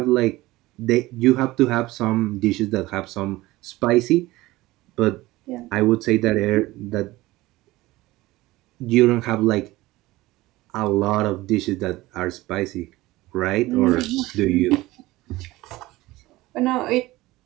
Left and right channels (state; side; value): quieter; left; 18.7 dB